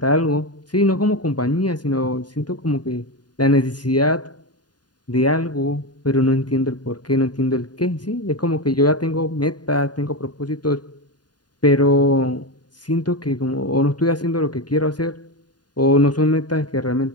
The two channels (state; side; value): late; right; 0.70 ms